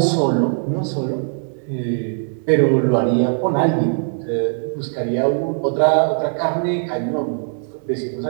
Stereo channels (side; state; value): left; silent; digital silence